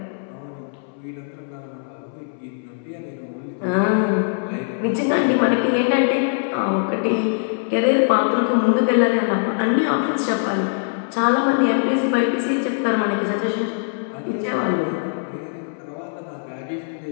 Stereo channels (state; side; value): silent; right; 64 dB below the other